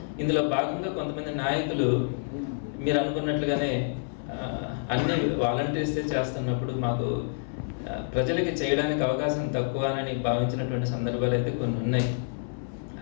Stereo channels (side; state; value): right; silent; 59 dB below the other